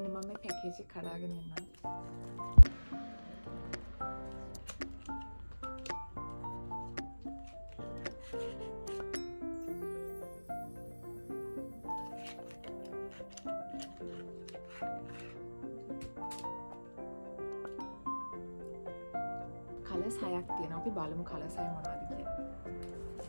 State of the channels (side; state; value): both; inverted; correlation -1.00